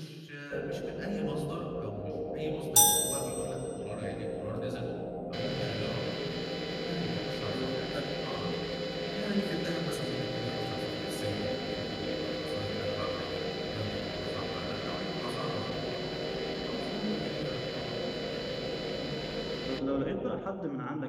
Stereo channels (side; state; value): both; identical; correlation 1.00